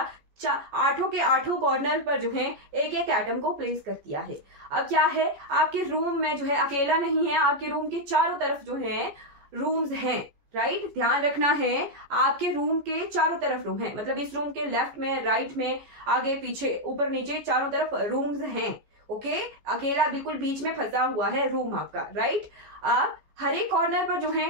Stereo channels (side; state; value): left; late; 14 ms